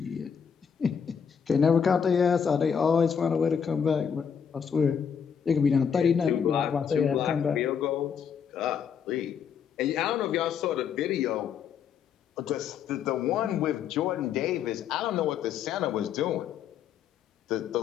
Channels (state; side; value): quieter; right; 7.3 dB